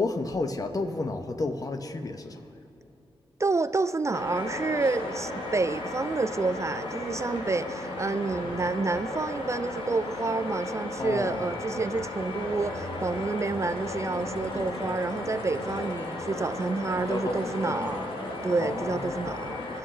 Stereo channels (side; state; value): both; normal; correlation 0.75